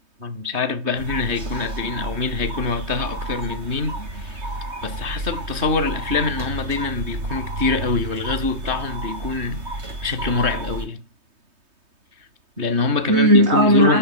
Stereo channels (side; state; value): left; late; 3.2 ms